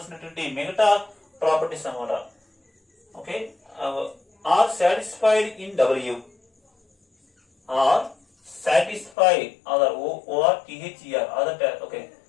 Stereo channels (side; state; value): right; drops out; at 9.2 s